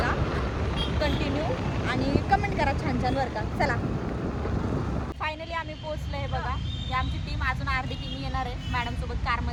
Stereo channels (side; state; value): both; identical; correlation 1.00